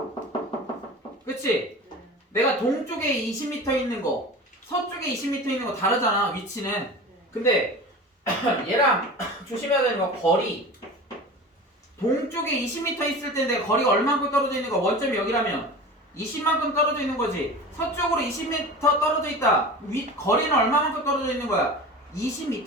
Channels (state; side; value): normal; both; correlation 0.34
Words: 그치? 내가 동쪽에 20m 있는 거 서쪽에 20m 있는 거 다르잖아. 위치는. 근데 얘랑 조심해야 되는 거 거리. 동쪽에 20m 있을 텐데 거리가 얼마만큼 떨어져 있는 거? 원점이 여기라면 20만큼 떨어져 있는 거지. 서쪽으로 20m 떨어져 있다. 거리는 얼마만큼 떨어져 있는 거야?